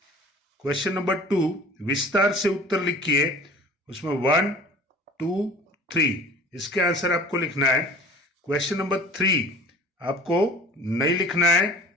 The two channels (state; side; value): normal; both; correlation 0.45